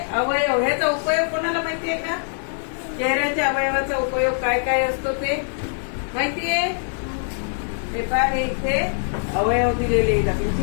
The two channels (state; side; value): silent; right; digital silence